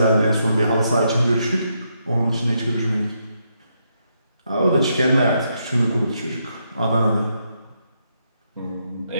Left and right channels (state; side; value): inverted; both; correlation -0.79